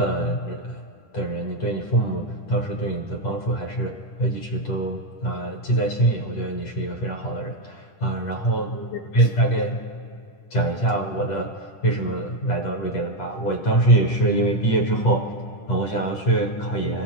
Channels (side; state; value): right; late; 10 ms